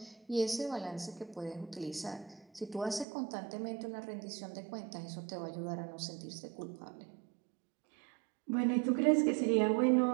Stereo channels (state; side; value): drops out; left; at 3.1 s